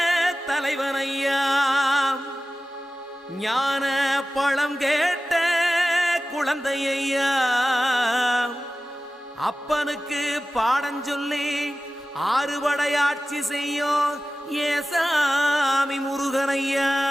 தலைவனையா ஞான பழம் கேட்ட குழந்தையா அப்பனுக்கு பாடம் சொல்லி ஆறுபடையாட்சி செய்யும் ஏசாமி முருகனையா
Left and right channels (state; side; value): normal; both; correlation 0.95